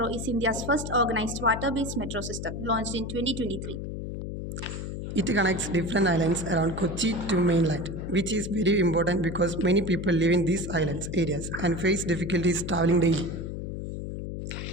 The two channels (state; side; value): noise; left; hum, 6 dB below the sound